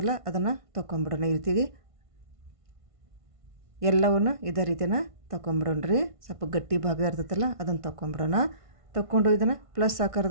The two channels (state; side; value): late; left; 1.5 ms